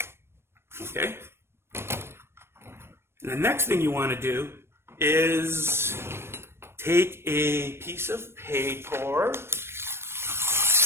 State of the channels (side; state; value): left; late; 0.12 ms